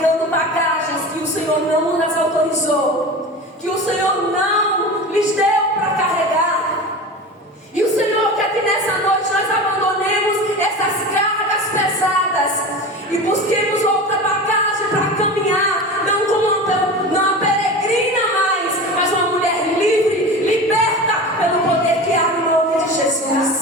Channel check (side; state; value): both; normal; correlation 0.30